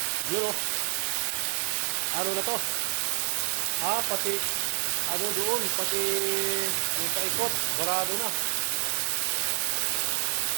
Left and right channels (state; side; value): silent; left; 59 dB below the other